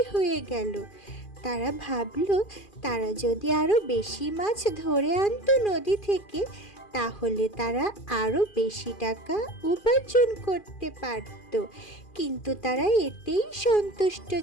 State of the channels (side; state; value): right; late; 2.4 ms